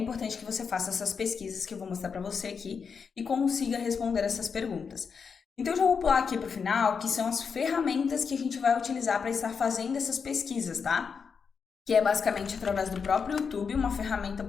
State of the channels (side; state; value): right; quieter; 5.9 dB